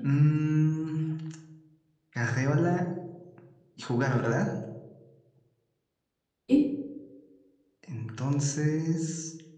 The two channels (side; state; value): both; identical; correlation 1.00